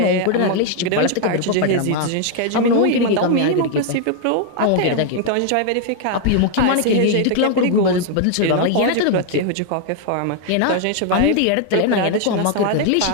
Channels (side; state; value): both; different; correlation 0.00